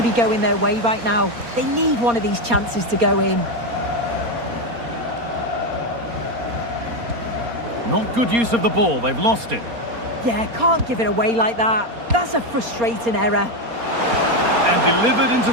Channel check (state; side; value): late; left; 4.3 ms